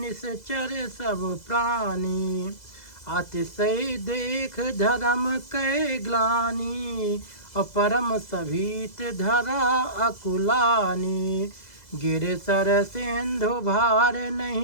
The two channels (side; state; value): right; late; 2.0 ms